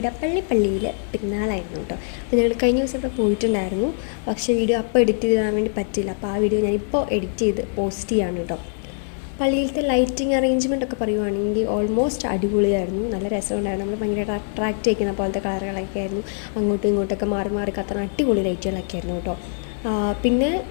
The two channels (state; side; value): silent; right; digital silence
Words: പള്ളിയിൽ പെരുന്നാളായിരുന്നു കേട്ടോ. അപ്പോൾ ഞങ്ങൾ കഴിഞ്ഞ ദിവസം ഇവിടെ പോയിട്ടുണ്ടായിരുന്നു. പക്ഷേ വീഡിയോ അപ്പോൾ എഡിറ്റ് ചെയ്ത് തരാൻ വേണ്ടി പറ്റില്ല. അപ്പോൾ ആ വീഡിയോ ഞാനിപ്പോൾ എഡിറ്റ് ചെയ്ത് പോസ്റ്റ് ചെയ്യാണ് കേട്ടോ. പള്ളിയിലത്തെ ലൈറ്റിംഗ് അറേഞ്ച്മെൻ്റ് ഒക്കെ പറയുവാണെങ്കിൽ ഓൾമോസ്റ്റ് അടിപൊളിയായിരുന്നു. നല്ല രസമുണ്ടായിരുന്നു. നമ്മൾ ഭയങ്കരമായിട്ട് അട്രാക്റ്റ് ചെയ്യുന്ന പോലത്തെ കളറുകളൊക്കെ ആയിരുന്നു. അങ്ങോട്ടും ഇങ്ങോട്ടൊക്കെ മാറി മാറി കത്തുന്ന അടിപൊളി ലൈറ്റുകളൊക്കെ ആയിരുന്നു കേട്ടോ. പിന്നെ